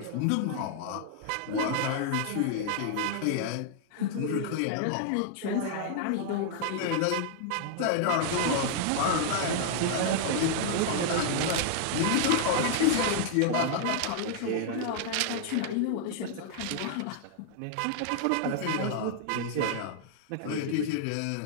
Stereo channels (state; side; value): different; both; correlation -0.01